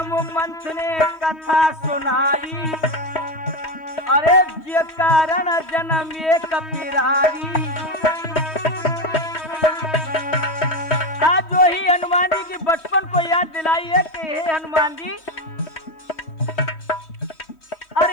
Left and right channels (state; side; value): late; right; 3.1 ms